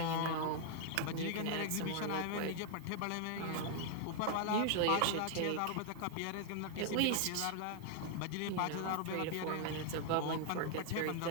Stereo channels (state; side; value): different; both; correlation 0.00